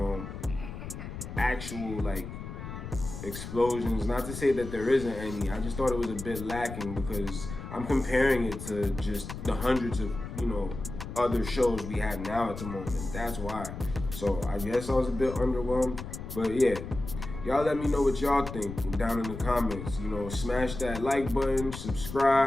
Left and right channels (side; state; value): left; noise; rumble, 9 dB below the sound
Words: actual, like, explosions. Not to say that there isn't any. I just thought it was a bit lacking because I'm comparing it to just the hundreds of, other shows we have now at the moment. That's why. So I guess I was a bit underwhelmed. But yeah, y'all let me know what y'all think down in the comments. Smash that like button,